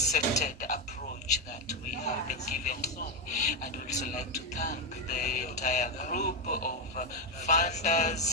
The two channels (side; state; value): both; normal; correlation 0.06